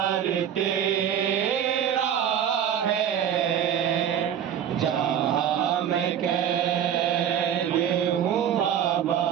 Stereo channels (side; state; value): left; quieter; 9.3 dB